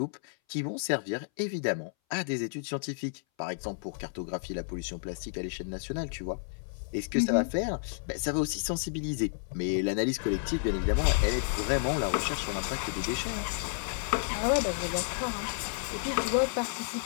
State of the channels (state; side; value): silent; right; 57 dB below the other